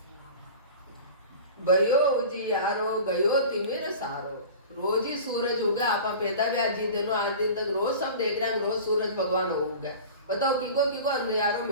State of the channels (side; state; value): both; inverted; correlation -0.37